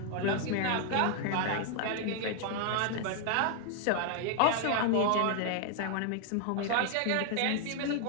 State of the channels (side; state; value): both; different; correlation 0.00